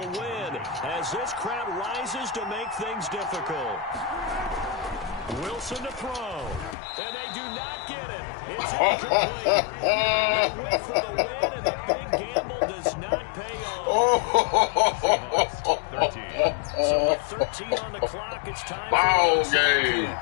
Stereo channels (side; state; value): right; drops out; at 6.8 s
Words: as this crowd rises to make things difficult. Wilson to throw. And they do not get it. It's incomplete. They went for the win, and the big gamble does not pay off. 13. So with 13 on the clock, it's time Ball for game.